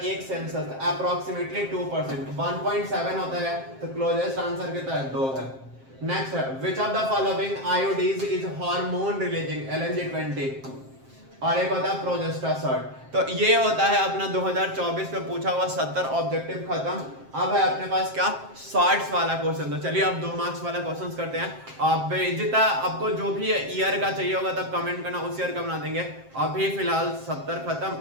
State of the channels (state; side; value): late; left; 7.6 ms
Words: census? Approximately 2%, 1.7 होता है। तो क्लोजेस्ट आंसर कितना है? 2 है। नेक्स्ट है, विच of the following आयोडीज is hormone releasing? LNG20। और एक होता है प्रोजेस्टासोल। तो ये होता है अपना 2024 में पूछा हुआ 70 ऑब्जेक्टिव खत्म। अब है अपने पास क्या? शॉर्ट्स वाला क्वेश्चन। तो चलिए अब 2 मार्क्स वाला क्वेश्चन करते हैं। अब जितना आपको जो भी ईयर का चाहिए होगा तब कमेंट करना, उस ईयर का बना देंगे। अभी फिलहाल 70 खत्म,